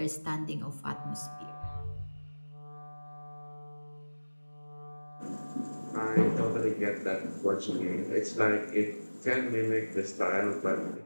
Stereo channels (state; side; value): inverted; both; correlation -1.00